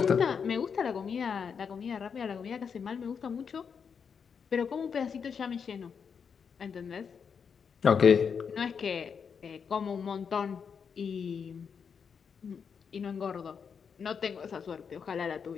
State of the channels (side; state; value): right; quieter; 6.5 dB